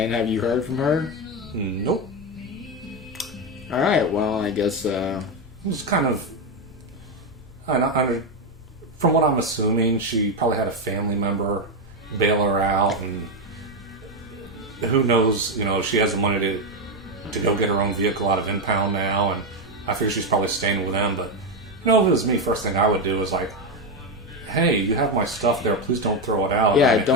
have you heard from her? Nope. All right. Well, I guess it was kind of. From what I'm assuming, she probably had a family member bail her out, and who knows? You know, she has the money to go get her own vehicle out of impound now, and I figure she's probably staying with them. But you know, if it was me, first thing I would do is like, hey, you have my stuff there. Please don't throw it out. Yeah,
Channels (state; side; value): noise; left; hum, 25 dB below the sound